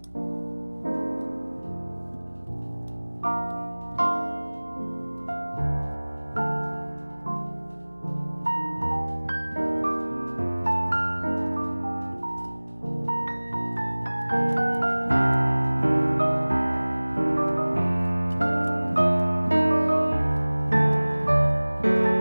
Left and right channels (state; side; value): inverted; both; correlation -1.00